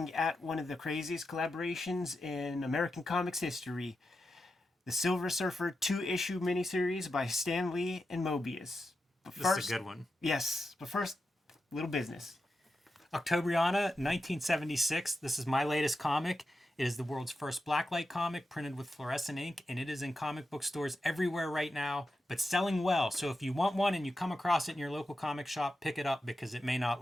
at one of the craziest collaborations in American comics history, the Silver Surfer 2-issue miniseries by Stan Lee and Moebius. But This is a good one. Yes, but first, little business. Octobriana, 1976. This is my latest comic. It is the world's first blacklight comic printed with fluorescent ink, and it is in comic book stores everywhere right now, but selling well. So if you want one and you come across it in your local comic shop, pick it up because it may not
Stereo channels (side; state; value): both; normal; correlation 0.89